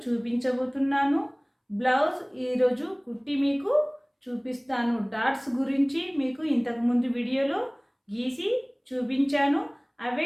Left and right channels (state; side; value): identical; both; correlation 1.00